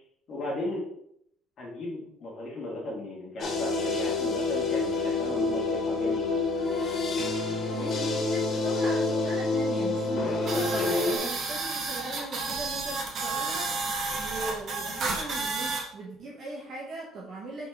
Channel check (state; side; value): normal; both; correlation 0.57